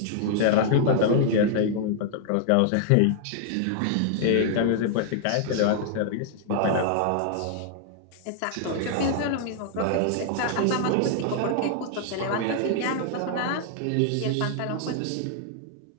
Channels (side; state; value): both; different; correlation -0.01